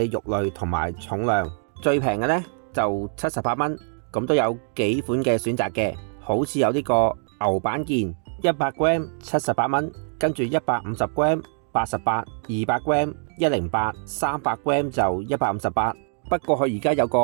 肉類同埋重量，最平嘅呢就78蚊，咁都有幾款嘅選擇嘅，好似有呢個牛板腱100g 78蚊，跟住150g 88，200g 108，300g 就158。不過佢而家有個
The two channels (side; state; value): left; silent; 55 dB below the other